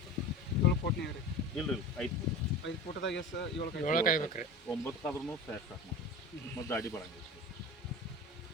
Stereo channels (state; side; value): normal; both; correlation 0.33